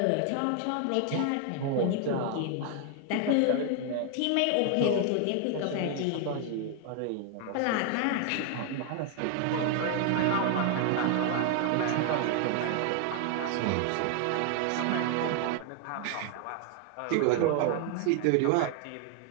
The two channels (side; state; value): both; different; correlation 0.00